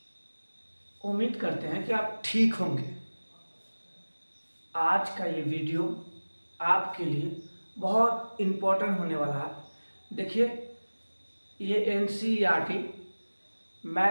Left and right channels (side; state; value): both; inverted; correlation -1.00